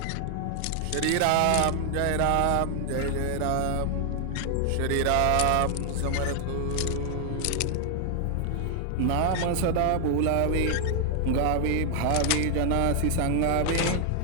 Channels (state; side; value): different; both; correlation 0.00